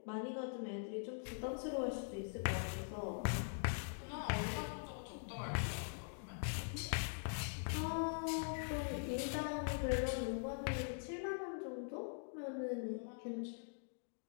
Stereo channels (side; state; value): right; silent; digital silence